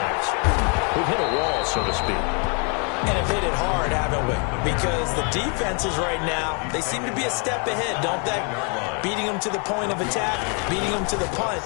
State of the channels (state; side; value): quieter; right; 37.0 dB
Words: We've hit a wall, so to speak. And have hit it hard, haven't we? Because the defenses right now, they seem to be a step ahead, don't they? Beating them to the point of attack, beating them to the